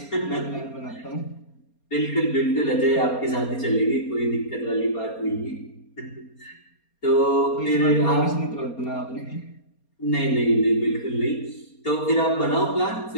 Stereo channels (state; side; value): late; right; 4.3 ms